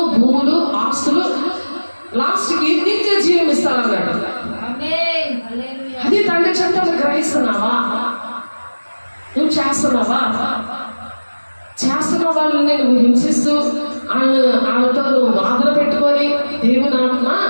భూములు, ఆస్తులు, లాస్ట్కి నిత్య జీవం ఇస్తారన్నాడు. అది తండ్రి చెప్తాను. గ్రహిస్తున్నావా? నువ్వు చేస్తున్నావా? చేస్తున్న వాళ్ళని నువ్వు హింసిస్తూ వాళ్ళతో నువ్వు వాదన పెట్టుకొని దేవుని ఆత్మ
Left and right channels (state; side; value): inverted; both; correlation -1.00